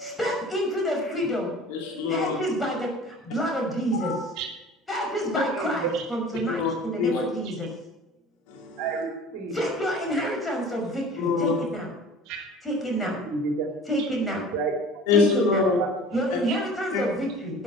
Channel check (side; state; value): both; normal; correlation 0.43